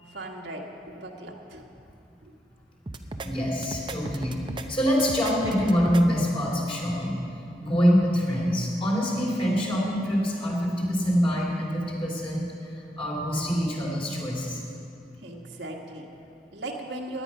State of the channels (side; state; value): both; normal; correlation 0.83